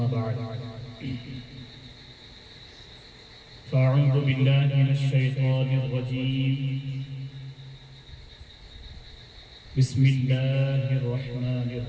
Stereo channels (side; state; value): both; identical; correlation 1.00